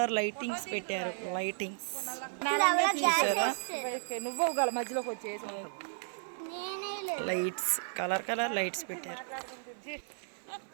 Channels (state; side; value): silent; left; 55 dB below the other